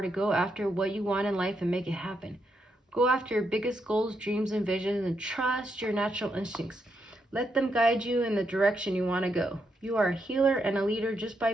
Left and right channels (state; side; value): normal; both; correlation 0.80